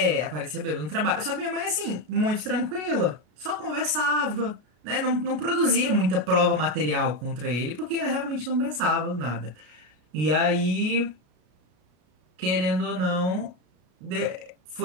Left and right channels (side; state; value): left; late; 33 ms